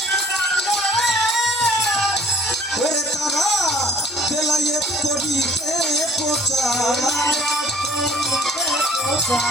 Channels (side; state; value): both; normal; correlation 0.53